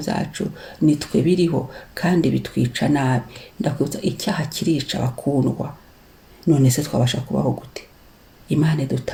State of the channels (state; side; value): identical; both; correlation 1.00